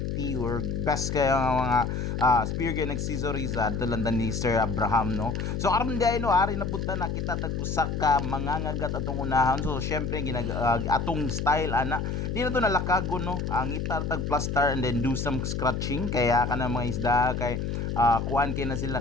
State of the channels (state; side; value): noise; left; hum, 2 dB below the sound